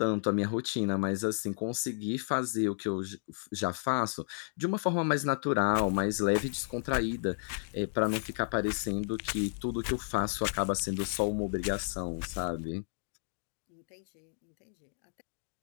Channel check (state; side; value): silent; right; digital silence